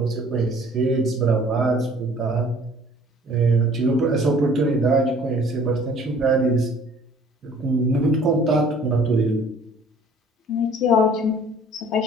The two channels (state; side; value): normal; both; correlation 0.53